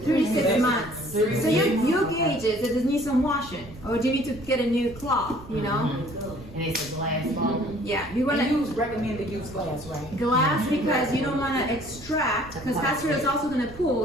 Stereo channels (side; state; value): right; noise; rumble, 18 dB below the sound